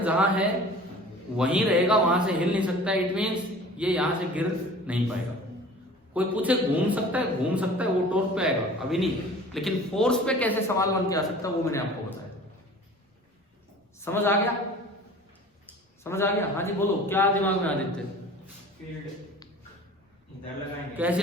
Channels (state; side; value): normal; both; correlation 0.44